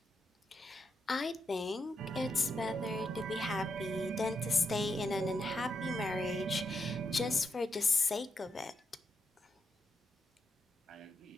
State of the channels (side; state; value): both; normal; correlation 0.82